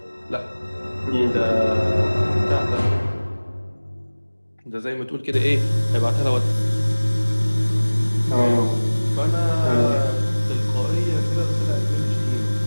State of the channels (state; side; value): inverted; both; correlation -1.00